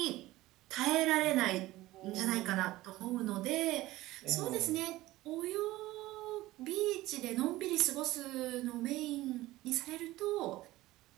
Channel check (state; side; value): quieter; left; 17.5 dB